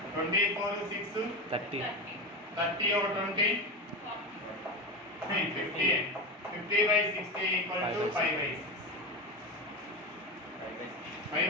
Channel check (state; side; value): normal; both; correlation 0.19